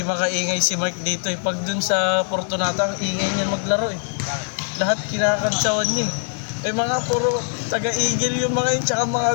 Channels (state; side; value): silent; right; 59 dB below the other